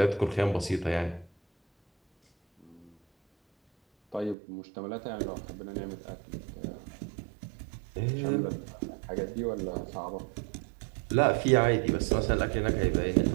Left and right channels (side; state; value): left; drops out; at 4.4 s